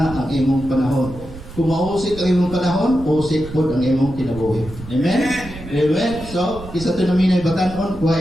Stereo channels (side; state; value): right; noise; rumble, 14 dB below the sound